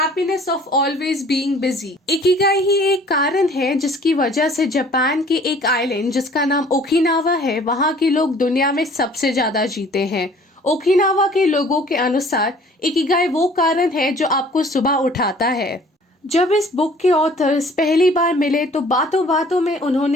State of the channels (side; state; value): both; normal; correlation 0.53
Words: of always being busy. Ikigai ही एक कारण है जिसकी वजह से जापान के एक आइलैंड जिसका नाम ओकिनावा है, वहाँ के लोग दुनिया में सबसे ज्यादा जीते हैं। ओकिनावा के लोगों के अनुसार इकिगाई वो कारण है जो आपको सुबह उठाता है। जब इस बुक के ऑथर्स पहली बार मिले तो बातों बातों में